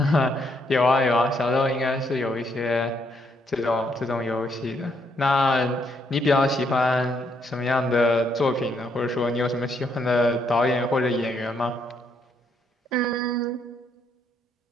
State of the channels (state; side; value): normal; both; correlation 0.73